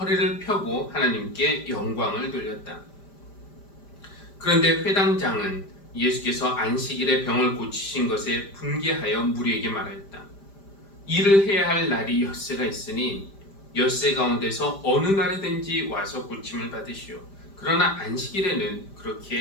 펴고 하나님께 영광을 돌렸다. 그런데 회당장은 예수께서 안식일에 병을 고치신 것에 분개하여 무리에게 말하였다. 일을 해야 할 날이 엿새가 있으니 엿새 가운데서 어느 날이든지 와서 고침을 받으시오. 그러나 안식일에는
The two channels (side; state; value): right; late; 5.1 ms